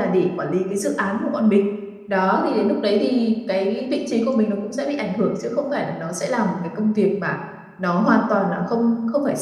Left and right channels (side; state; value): both; identical; correlation 1.00